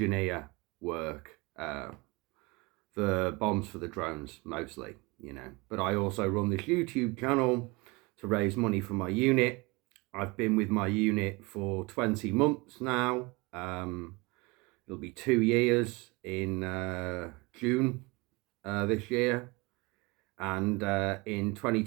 work. The bombs for the drones mostly, but I also run this YouTube channel to raise money for my unit. I've been with my unit for 20 months now. It'll be 2 years in June this year, and in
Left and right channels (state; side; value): quieter; left; 25.1 dB